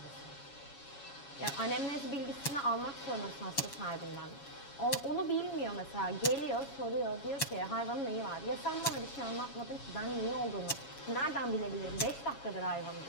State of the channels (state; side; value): late; right; 7.2 ms